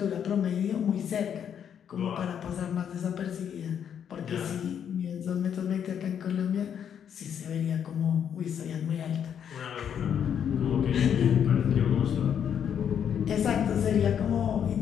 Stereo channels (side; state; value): right; quieter; 8.5 dB